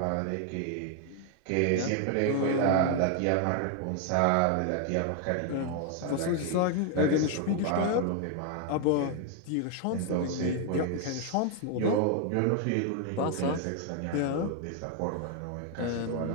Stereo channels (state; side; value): different; both; correlation 0.00